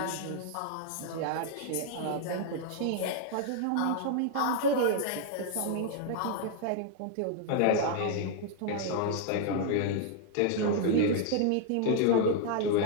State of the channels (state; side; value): different; both; correlation 0.00